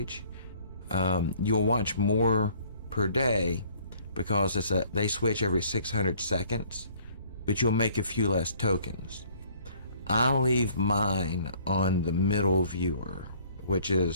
you'll watch more per day because they switch every 600 seconds, but you'll make a few less tokens. I'll leave mine on the middle viewer, which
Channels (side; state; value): both; inverted; correlation -0.58